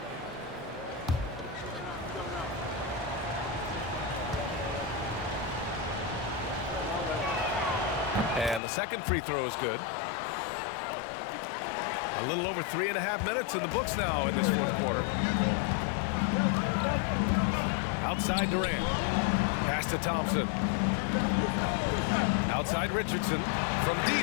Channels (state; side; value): drops out; right; at 8.6 s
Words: And the second free throw is good. A little over 3.5 minutes in the books now in this fourth quarter. Outside Durant. Pass to Thompson. Outside Richardson. From